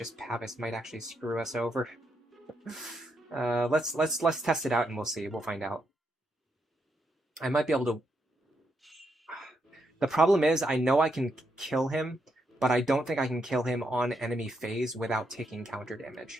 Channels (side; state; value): both; normal; correlation 0.80